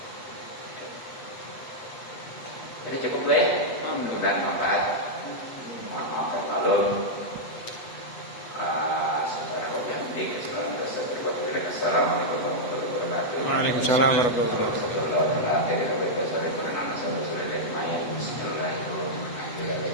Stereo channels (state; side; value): late; right; 8.1 ms